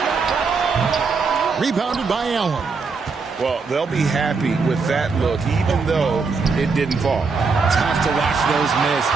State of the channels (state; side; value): quieter; left; 4.7 dB